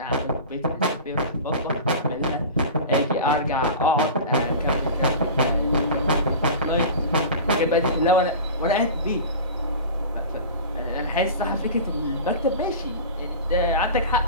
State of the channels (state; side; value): inverted; both; correlation -0.33